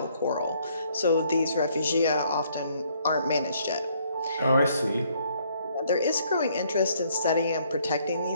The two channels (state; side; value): inverted; both; correlation -0.66